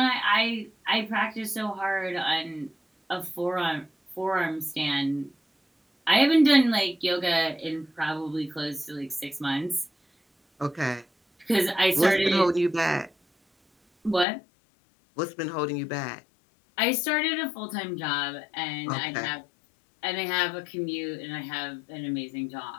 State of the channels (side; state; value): right; drops out; at 14.2 s